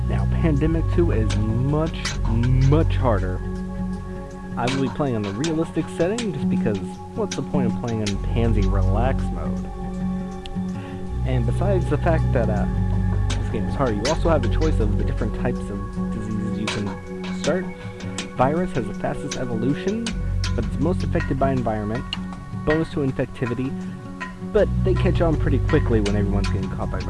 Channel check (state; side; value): identical; both; correlation 1.00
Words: Now, Pandemic 2 is much harder. I will be playing on the realistic setting just because what's the point of playing in Pansy Relax mode? And besides the fact that this game is hard, you also have the choice of the different types of diseases you can start. Virus has the fastest evolution, but it's most affected by environment. Bonus to infectivity, but they catch on pretty quickly when everyone's getting caught by